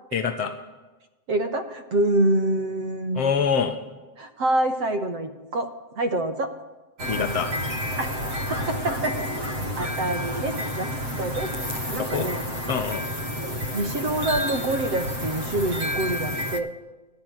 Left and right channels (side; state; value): left; late; 7.7 ms